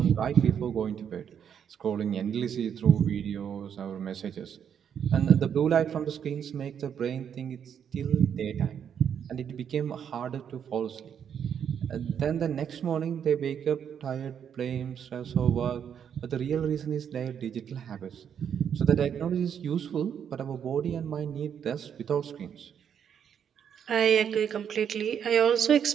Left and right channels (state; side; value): quieter; left; 8.3 dB